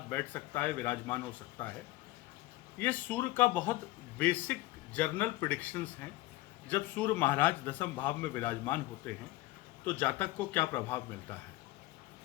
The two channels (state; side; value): quieter; right; 18.0 dB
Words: बैठ सकता है, विराजमान हो सकता है। ये सूर्य का बहुत बेसिक जनरल प्रेडिक्शंस हैं। जब सूर्य महाराज दशम भाव में विराजमान होते हैं तो जातक को क्या प्रभाव मिलता है।